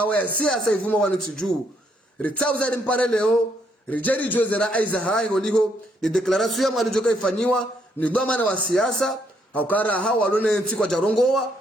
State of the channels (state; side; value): normal; both; correlation 0.73